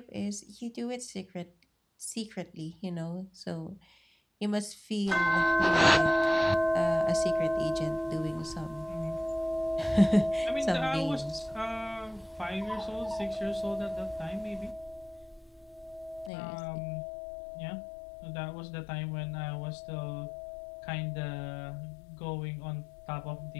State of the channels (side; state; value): right; drops out; at 16.3 s